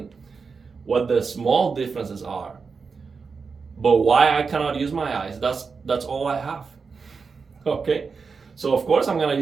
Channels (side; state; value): left; quieter; 5.1 dB